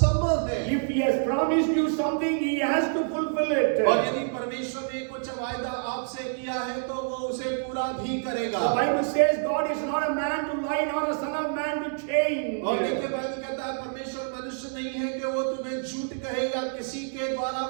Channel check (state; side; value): silent; left; 60 dB below the other